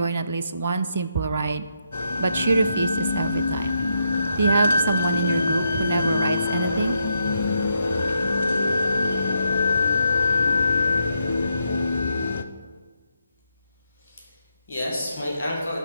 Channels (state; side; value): inverted; both; correlation -0.80